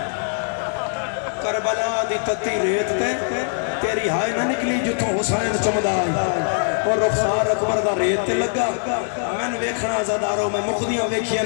کربلا دی تتی ریت تے تیری ہائے نہ نکلی جتوں حسین چمدا آئی اور رخسار اکبر دا ریت تے لگا میں نے ویکھنا زداروں میں مقدیاں ویکھیاں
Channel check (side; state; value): right; silent; digital silence